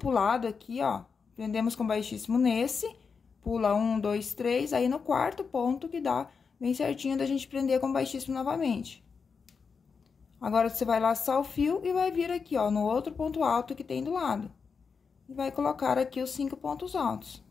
aqui, ó. Prendemos com baixíssimo nesse, pula 1, 2, 3, aí no quarto ponto que dá bem certinho da gente prender com baixíssimo novamente. Agora, você vai laçar o fio e vai vir aqui, ó, no outro ponto alto que tem do lado. E vai colocar aqui os 5 pontos altos.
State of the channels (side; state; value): right; quieter; 5.5 dB